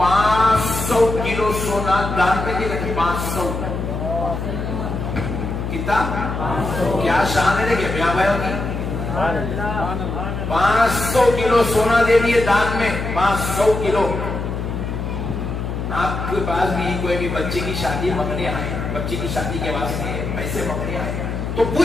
کلو سونا دان میں دے گئے. 500 کتنا؟ کیا شان ہے کہ بیاں بھائیوں کی 500 کلو سونا دے دیے دان میں. 500 کلو. آپ کے پاس بھی کوئی بھی بچے کی شادی منگنے آئے، بچے کی شادی کے واسطے پیسے منگنے آئے تو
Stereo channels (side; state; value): left; noise; hum, 4 dB below the sound